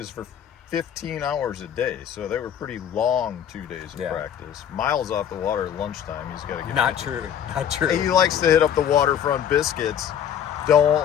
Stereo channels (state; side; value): quieter; right; 9.2 dB